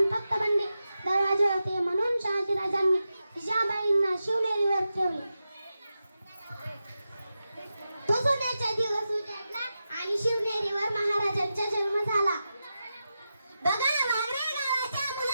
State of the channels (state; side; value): inverted; both; correlation -0.90